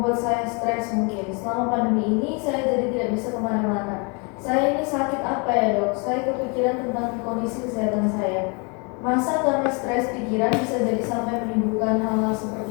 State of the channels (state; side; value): quieter; right; 33.1 dB